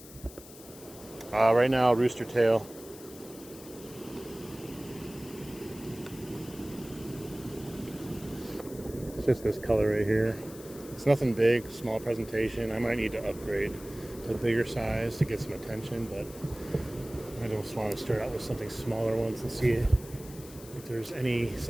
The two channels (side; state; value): left; noise; hiss, 18 dB below the sound